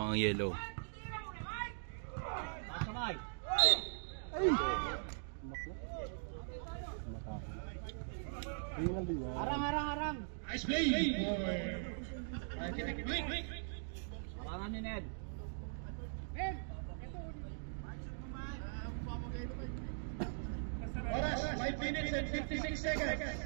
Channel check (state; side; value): silent; left; digital silence